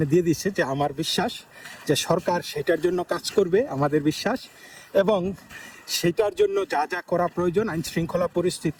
দিয়ে দিচ্ছে যে আমার বিশ্বাস যে সরকার সেটার জন্য কাজ করবে, আমাদের বিশ্বাস। এবং সেটার জন্য যা যা করা প্রয়োজন আইন শৃঙ্খলা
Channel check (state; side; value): identical; both; correlation 1.00